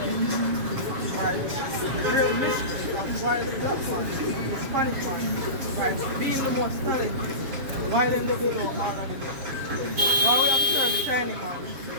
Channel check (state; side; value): late; left; 7.3 ms